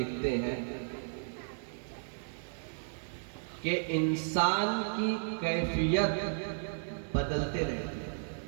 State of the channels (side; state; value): left; silent; digital silence